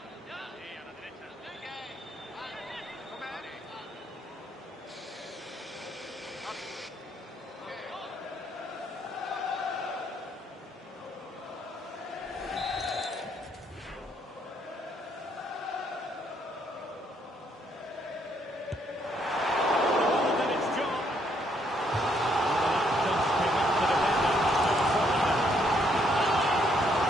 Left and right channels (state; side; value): normal; both; correlation 0.71